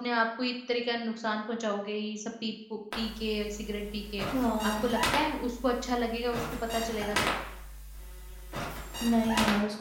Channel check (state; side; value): identical; both; correlation 1.00